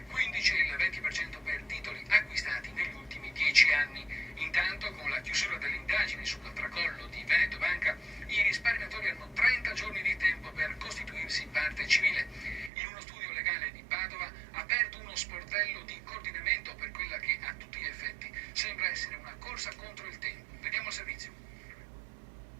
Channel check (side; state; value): left; drops out; at 12.7 s